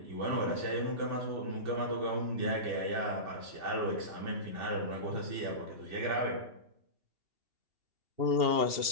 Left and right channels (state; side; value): late; left; 2.8 ms